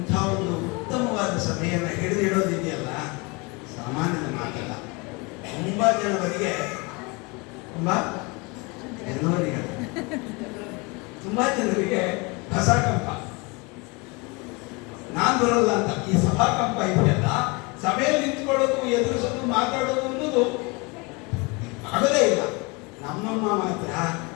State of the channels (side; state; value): right; quieter; 27.5 dB